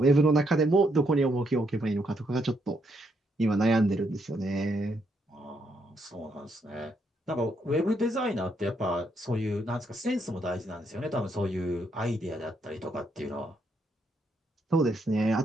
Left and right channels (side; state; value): both; normal; correlation 0.75